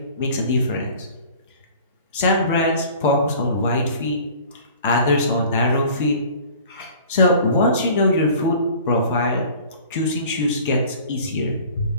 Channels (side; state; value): both; inverted; correlation -0.46